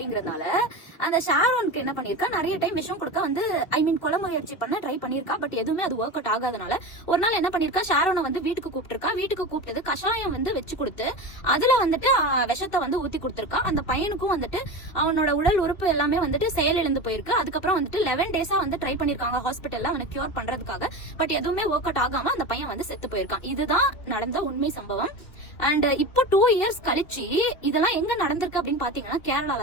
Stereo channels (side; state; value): right; late; 2.9 ms